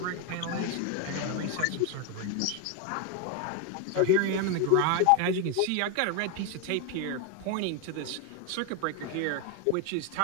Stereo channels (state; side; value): different; both; correlation 0.01